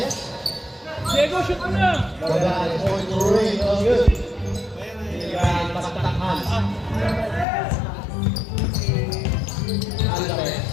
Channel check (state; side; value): drops out; right; at 7.5 s